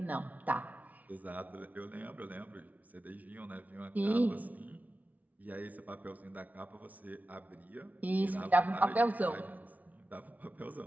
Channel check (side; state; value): left; late; 0.073 ms